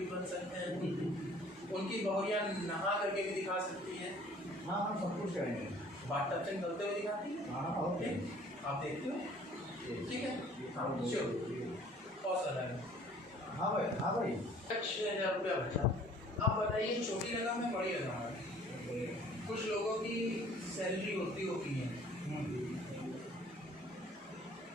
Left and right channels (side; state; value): both; normal; correlation 0.54